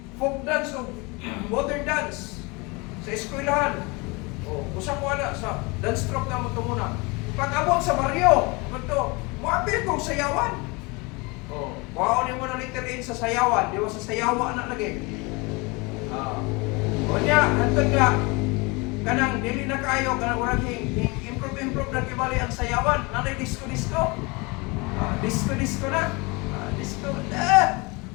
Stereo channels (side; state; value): right; quieter; 27.1 dB